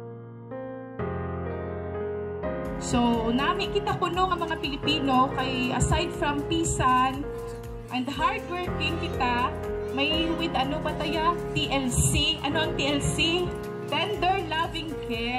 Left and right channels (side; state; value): both; identical; correlation 1.00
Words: So, nami kita kuno ang mga Pilipino kay aside from pisan and hardworking kita, may with ano ba tayo? TLC. Ano ang TLC? Tender loving